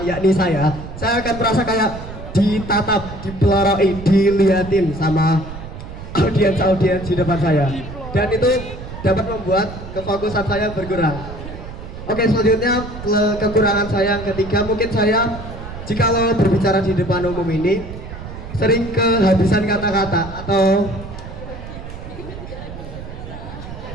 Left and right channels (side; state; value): right; noise; rumble, 11 dB below the sound